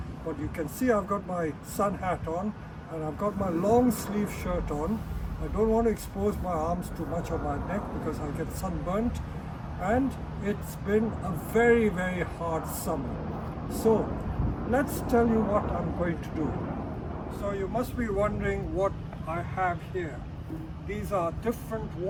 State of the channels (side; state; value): both; identical; correlation 1.00